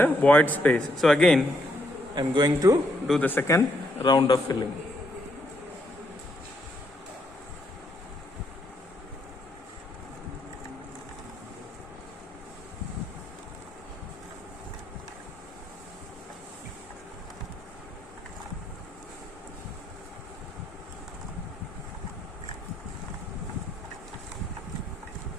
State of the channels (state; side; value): normal; both; correlation 0.75